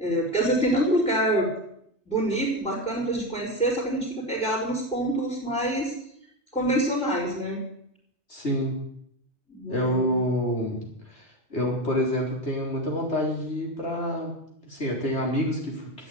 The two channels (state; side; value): normal; both; correlation 0.18